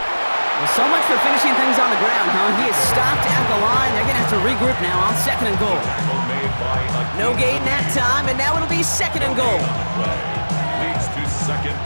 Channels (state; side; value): inverted; both; correlation -1.00